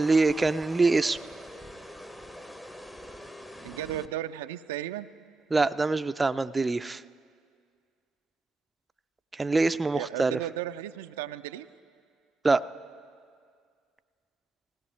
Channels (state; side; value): quieter; left; 3.4 dB